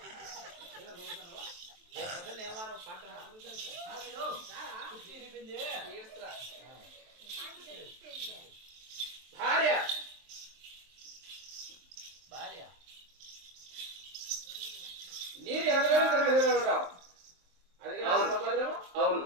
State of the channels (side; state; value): left; late; 23 ms